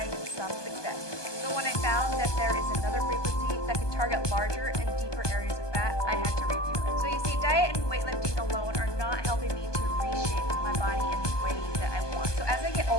some success. So when I found that there is another frequency that could target larger and deeper areas of fat, I had to review it. So you see, diet and weightlifting alone are not helping me to reshape my body in the way that I want. So as I get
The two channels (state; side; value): late; right; 1.2 ms